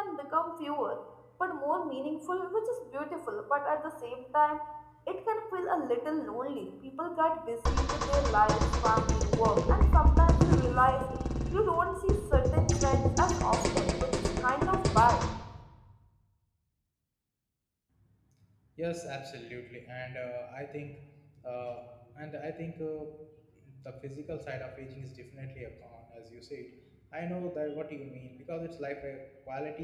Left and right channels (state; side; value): identical; both; correlation 1.00